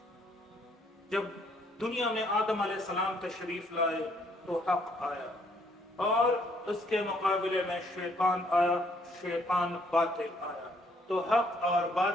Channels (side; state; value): both; normal; correlation 0.67